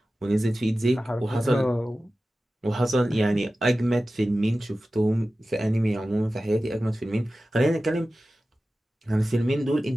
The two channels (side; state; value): both; normal; correlation 0.95